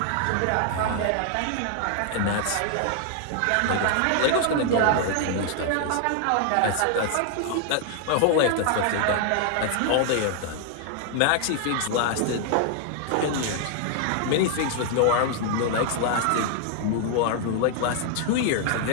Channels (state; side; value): different; both; correlation 0.00